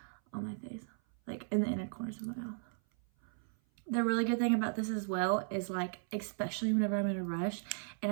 on my face, like in the inner corners of my mouth. The really good thing about this as well is like, especially whenever I'm in a rush and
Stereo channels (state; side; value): silent; left; 54 dB below the other